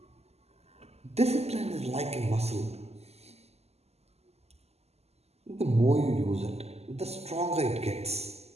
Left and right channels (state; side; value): late; left; 0.30 ms